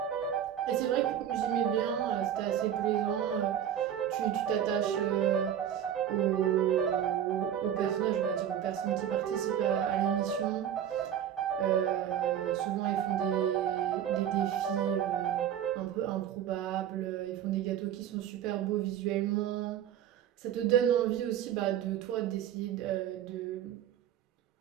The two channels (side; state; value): left; quieter; 9.9 dB